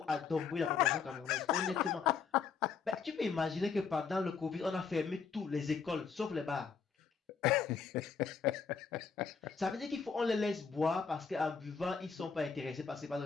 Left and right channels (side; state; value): right; quieter; 5.9 dB